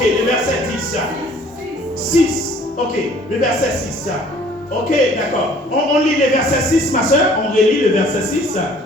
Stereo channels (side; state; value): both; normal; correlation 0.55